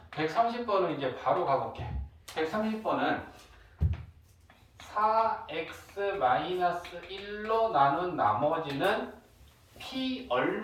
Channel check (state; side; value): identical; both; correlation 1.00